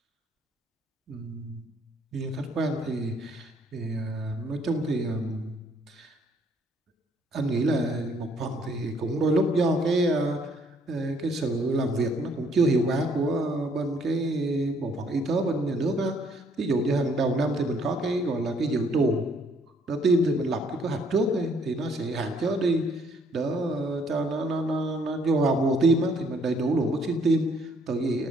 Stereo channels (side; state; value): both; normal; correlation 0.65